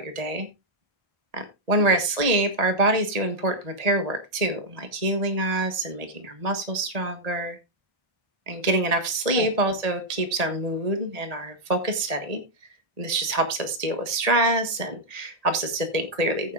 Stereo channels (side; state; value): left; late; 1.8 ms